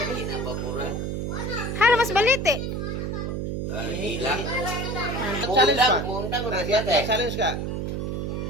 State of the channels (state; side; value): noise; right; hum, 2 dB below the sound